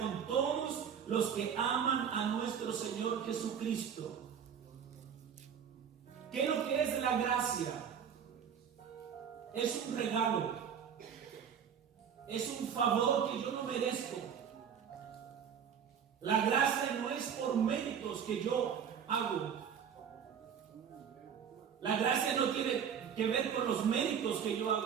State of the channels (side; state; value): left; quieter; 7.7 dB